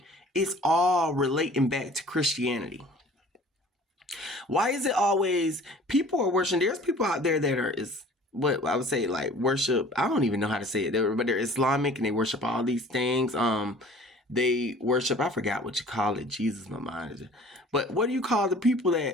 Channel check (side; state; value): both; normal; correlation 0.48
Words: it's all relating back to Christianity. Why is it always people are worshiping? There's people out there that are what I would say, like, worship. I don't even know how to say it, but they're Islamic and they worship all these things. They worship, I forgot what you call it. Jesus, my mind is. But what do you call the people